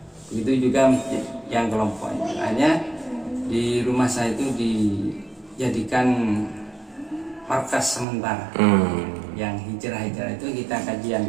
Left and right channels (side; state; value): left; drops out; at 8.1 s